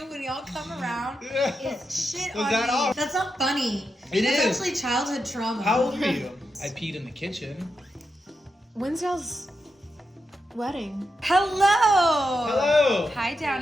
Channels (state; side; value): normal; both; correlation 0.87